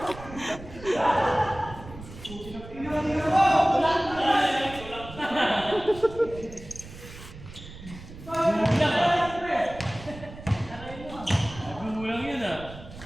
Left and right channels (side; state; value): right; noise; rumble, 15 dB below the sound